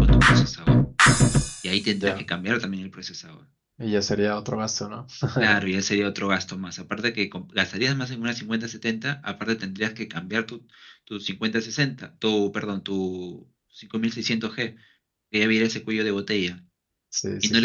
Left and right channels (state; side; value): identical; both; correlation 1.00